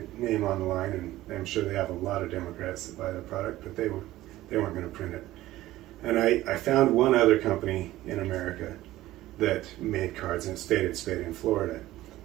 name on the line, and I'm sure they have a lot of Democrats that buy the product, but they weren't going to print it. And I found one other company in America that made cards, and it's Faded Spade in Florida.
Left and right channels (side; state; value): left; quieter; 15.9 dB